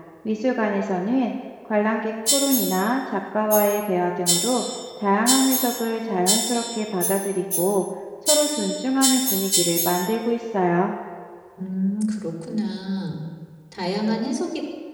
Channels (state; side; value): identical; both; correlation 1.00